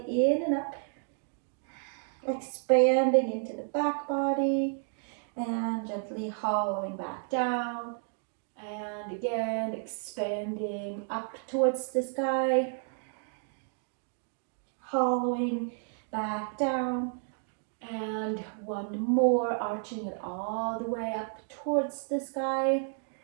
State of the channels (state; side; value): silent; left; 57 dB below the other